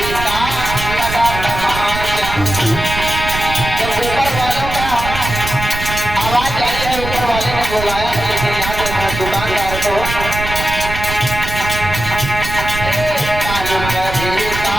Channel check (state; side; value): noise; right; rumble, 7 dB below the sound